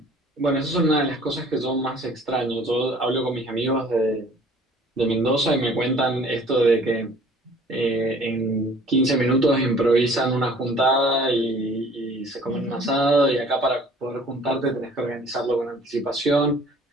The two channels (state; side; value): normal; both; correlation 0.52